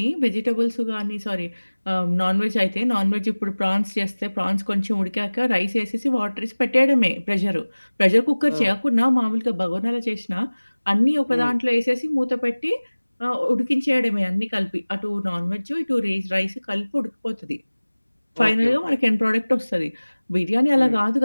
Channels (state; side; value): inverted; both; correlation -1.00